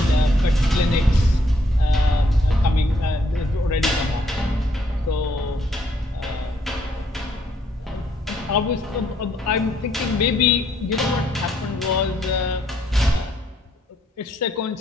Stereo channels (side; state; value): both; normal; correlation 0.70